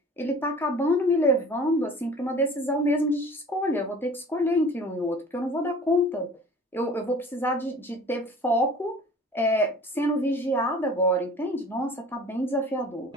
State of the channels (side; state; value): both; normal; correlation 0.45